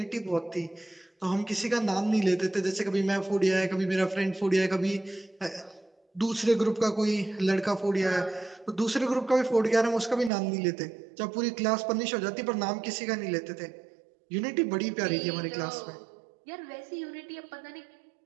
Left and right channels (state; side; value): drops out; left; at 10.3 s